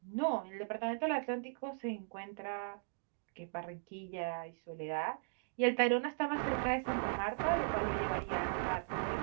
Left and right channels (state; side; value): silent; left; digital silence